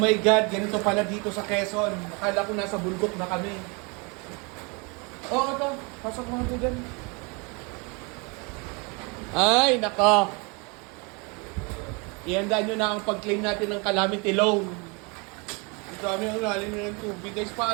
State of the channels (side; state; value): left; quieter; 30.8 dB